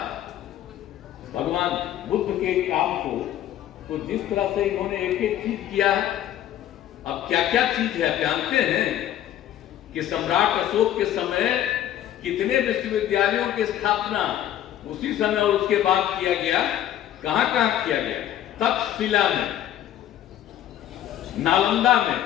भगवान बुद्ध के काम को, तो जिस तरह से इन्होंने एक एक चीज किया है, अब क्या क्या चीज है जानते हैं कि सम्राट अशोक के समय कितने विश्वविद्यालयों की स्थापना उसी समय और उसके बाद किया गया। कहां कहां किया गया? तक्षशिला में, नालंदा में,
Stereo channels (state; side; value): quieter; right; 11.8 dB